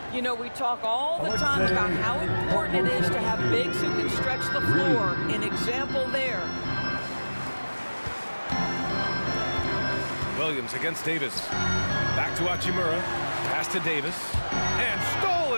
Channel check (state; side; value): inverted; both; correlation -1.00